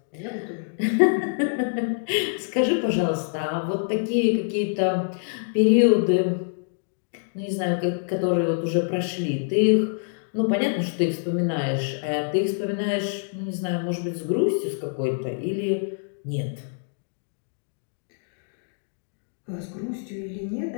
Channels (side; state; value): right; silent; digital silence